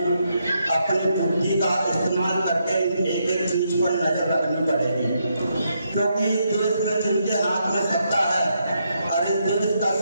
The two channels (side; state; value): both; inverted; correlation -0.79